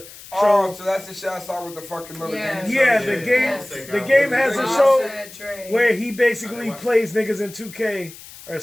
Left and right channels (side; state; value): left; noise; hiss, 18 dB below the sound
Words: Oh, show. so that's the shit I saw with the fucking little Yeah. game. Yeah, show. the Yeah, game. Offset The got game one. has a Offset, show Offset, Dre. where he basically I watched plays niggas in 2K or